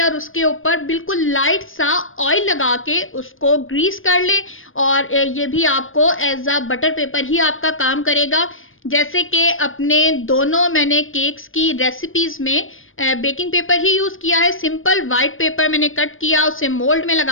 और उसके ऊपर बिल्कुल लाइट सा ऑयल लगा के उसको ग्रीस कर ले और ये भी आपको एज अ बटर पेपर ही आपका काम करेगा। जैसे कि अपने दोनों मैंने केक्स की रेसिपीज में बेकिंग पेपर ही यूज़ किया है। सिंपल वाइट पेपर मैंने कट किया, उसे मोल्ड में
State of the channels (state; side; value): late; right; 0.59 ms